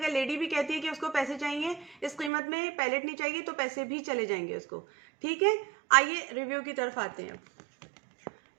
लेडी भी कहती है कि उसको पैसे चाहिए, इस कीमत में पैलेट नहीं चाहिए, तो पैसे भी चले जाएंगे उसको, ठीक है। आइए रिव्यू की तरफ आते हैं।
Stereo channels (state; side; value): drops out; left; at 2.3 s